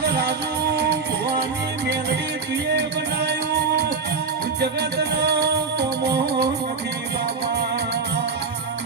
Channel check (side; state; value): left; quieter; 4.8 dB